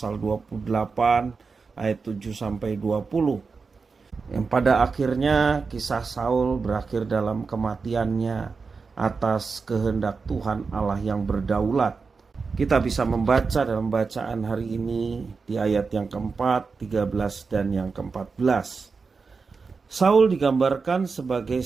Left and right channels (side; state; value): left; quieter; 4.8 dB